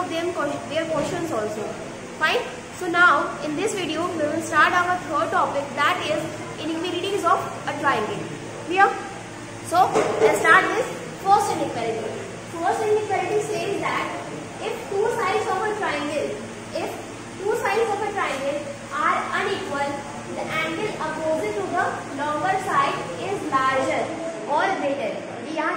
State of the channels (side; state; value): both; identical; correlation 1.00